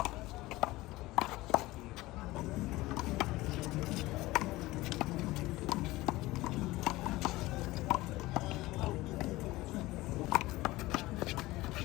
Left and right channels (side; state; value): right; quieter; 19.1 dB